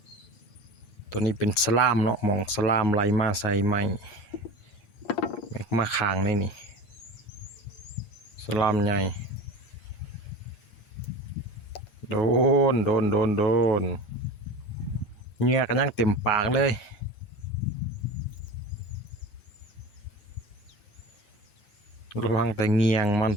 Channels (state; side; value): late; right; 8.6 ms